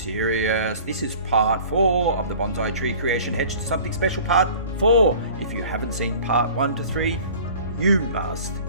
This is part 4 of the Bonsai Tree Creation Hedge to Something Special part 4. If you haven't seen part 1 to 3, you must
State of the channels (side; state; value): both; inverted; correlation -0.45